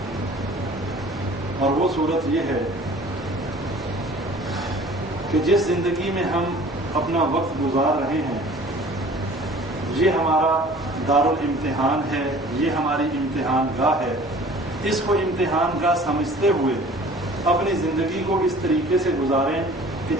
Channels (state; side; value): normal; both; correlation 0.48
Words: اور وہ صورت یہ ہے کہ جس زندگی میں ہم اپنا وقت گزار رہے ہیں یہ ہمارا دارالامتحان ہے، یہ ہماری امتحان گاہ ہے. اس کو امتحان گاہ سمجھتے ہوئے اپنی زندگی کو اس طریقے سے گزاریں کہ